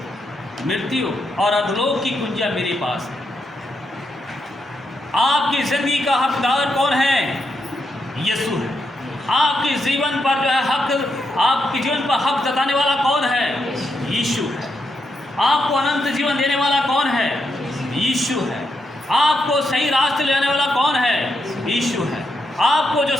मृत्यु और अधोलोक की कुंजियां मेरे पास है। आपकी जिंदगी का हकदार कौन है? यीशु है। आपके जीवन पर जो है हक, आपके जीवन पर हक जताने वाला कौन है? यीशु है। आपको अनंत जीवन देने वाला कौन है? यीशु है। आपको सही रास्ते ले जाने वाला कौन है? यीशु है। आपको जो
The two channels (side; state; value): both; normal; correlation 0.82